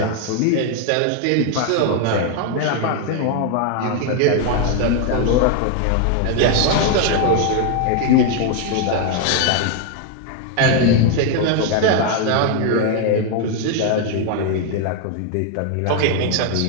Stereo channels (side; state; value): both; different; correlation 0.01